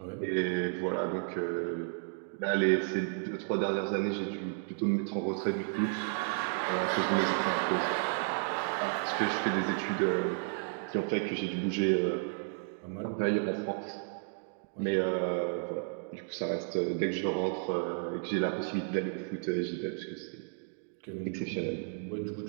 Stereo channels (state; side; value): silent; left; 56 dB below the other